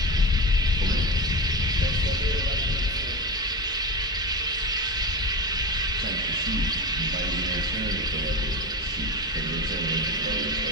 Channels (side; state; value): both; normal; correlation 0.23